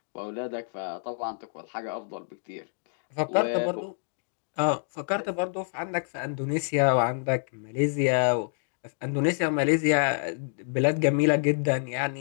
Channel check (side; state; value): right; silent; digital silence